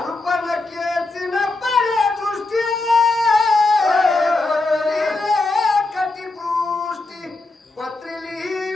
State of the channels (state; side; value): quieter; right; 3.3 dB